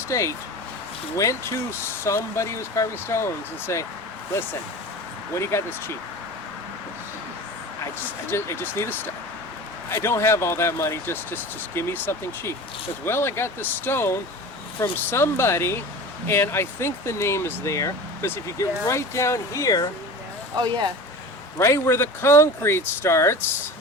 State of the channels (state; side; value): normal; both; correlation 0.34